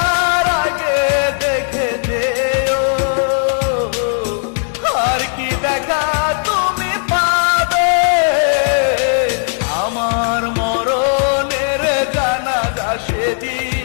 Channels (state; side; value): silent; right; 69 dB below the other